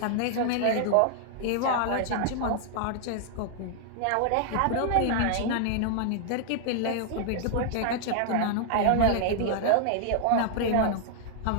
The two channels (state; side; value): different; both; correlation -0.01